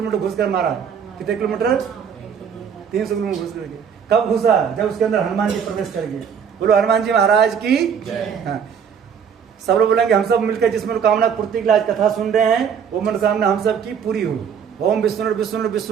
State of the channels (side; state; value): left; quieter; 7.3 dB